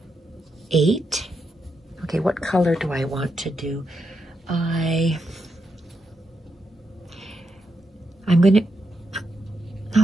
8. Okay, what color do I want to do? I'm gonna,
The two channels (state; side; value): normal; both; correlation 0.83